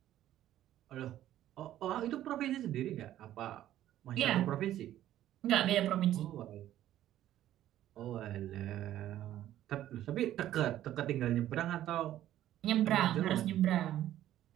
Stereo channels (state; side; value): quieter; left; 12.7 dB